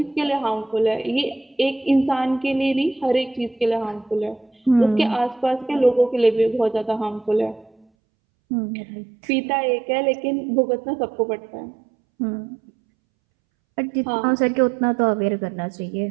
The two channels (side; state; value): left; drops out; at 7.9 s